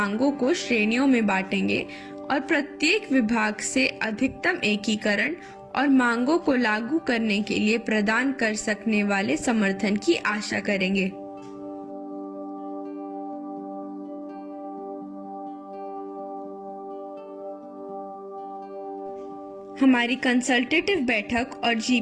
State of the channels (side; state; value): both; identical; correlation 1.00